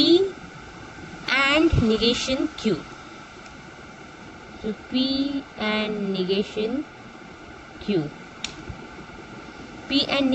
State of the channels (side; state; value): both; identical; correlation 1.00